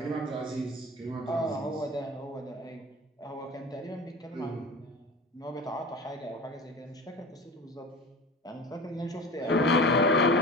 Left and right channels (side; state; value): both; normal; correlation 0.35